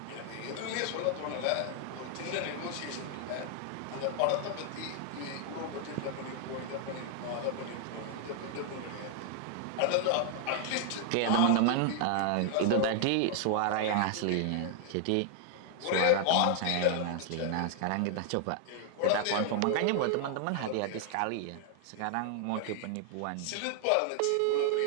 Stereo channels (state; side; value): different; both; correlation 0.00